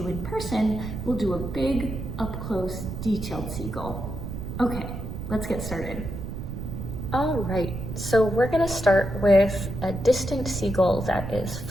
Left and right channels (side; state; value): right; noise; rumble, 7 dB below the sound